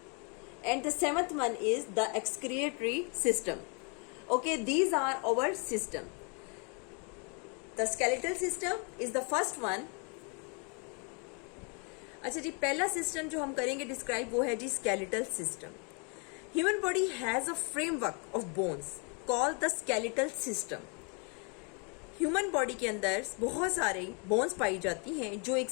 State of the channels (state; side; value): quieter; right; 35.8 dB